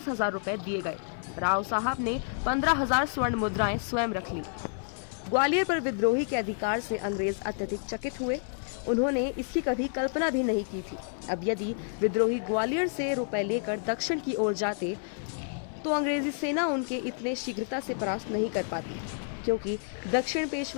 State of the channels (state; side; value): silent; right; 58 dB below the other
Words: रुपए दिए गए। राव साहब ने 15,000 स्वर्ण मुद्राएं स्वयं रख ली। ग्वालियर पर विद्रोही के अधिकार से अंग्रेज अत्यधिक चकित हुए। उन्होंने इसकी कभी कल्पना भी नहीं की थी। अब यदि विद्रोही ग्वालियर से रुपए लेकर दक्षिण की ओर जाते तो अंग्रेजी सेना उनके इतने शीघ्रता से परास्त नहीं कर पाती, क्योंकि दक्षिण